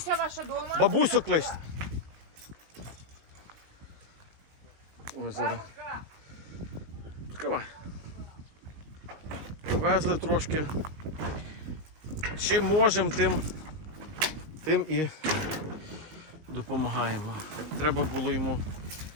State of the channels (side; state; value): left; late; 19 ms